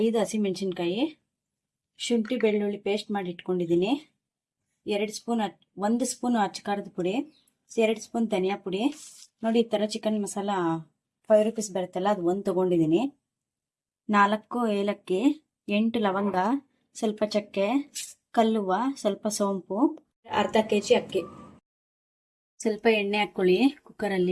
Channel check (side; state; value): both; identical; correlation 1.00